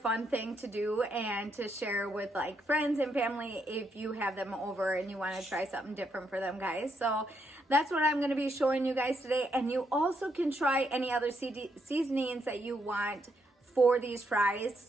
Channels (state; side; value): normal; both; correlation 0.77